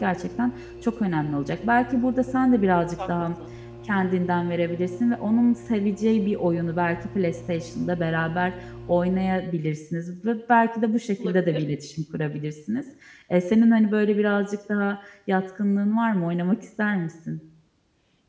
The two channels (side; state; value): both; identical; correlation 1.00